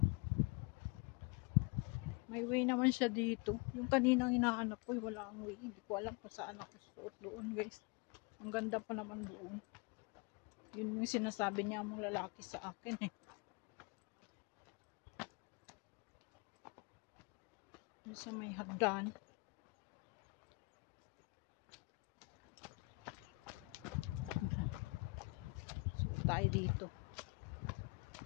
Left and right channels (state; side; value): quieter; right; 28.2 dB